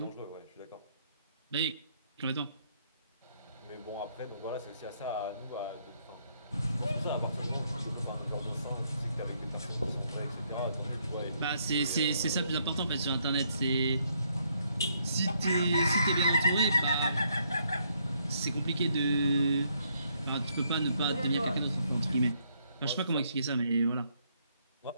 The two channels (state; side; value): inverted; both; correlation -0.72